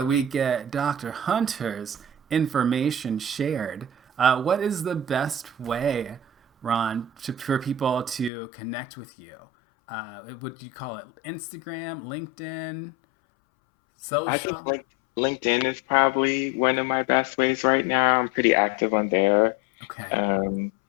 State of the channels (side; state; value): right; drops out; at 8.3 s